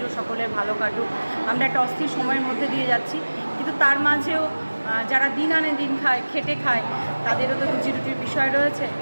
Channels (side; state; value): both; inverted; correlation -1.00